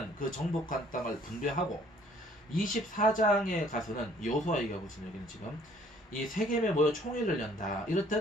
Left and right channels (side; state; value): both; normal; correlation 0.59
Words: 그 정복한 땅을 분배하고 24장에 가서는 여호수아 얘기하고 있습니다. 여기는 지금 이 세겜에 모여 총회를 연다.